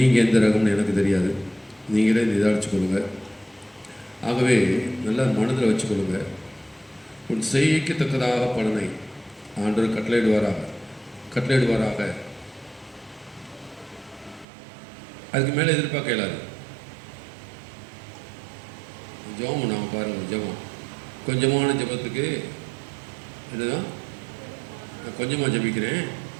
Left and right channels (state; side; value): drops out; left; at 14.5 s